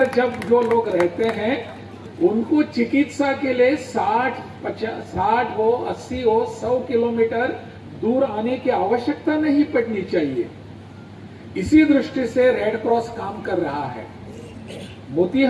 जब जो लोग रहते हैं उनको चिकित्सा के लिए 60 हो, 80 हो, 100 किलोमीटर दूर आने की आवश्यकता नहीं पड़नी चाहिए। इसी दृष्टि से रेड क्रॉस काम कर रहा है।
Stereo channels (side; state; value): both; identical; correlation 1.00